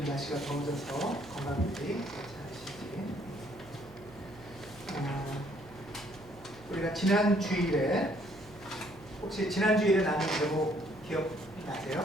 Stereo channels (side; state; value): right; noise; hum, 21 dB below the sound